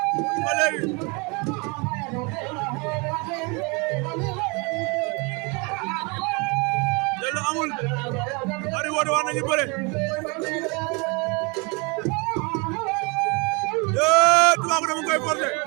ba léegi jël amul ari woote wax nañu bëre Toubacouta mu koy forcé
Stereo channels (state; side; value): quieter; left; 30.1 dB